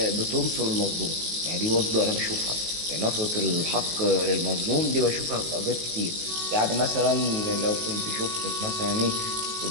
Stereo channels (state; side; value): late; left; 19 ms